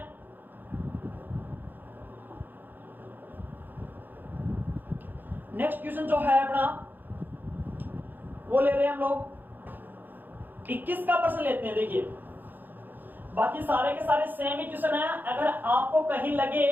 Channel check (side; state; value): left; late; 0.089 ms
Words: नेक्स्ट क्वेश्चन जो है अपना वो ले रहे हैं हम लोग 21 का प्रश्न लेते हैं। देखिए बाकी सारे के सारे सेम ही क्वेश्चन है, अगर आपको कहीं लगे